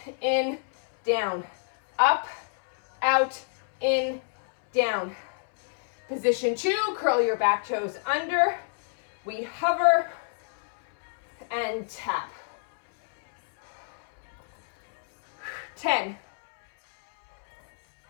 in, down. Up, out, in, down. Position 2, curl your back toes under. We hover and tap. 10,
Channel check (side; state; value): right; silent; 60 dB below the other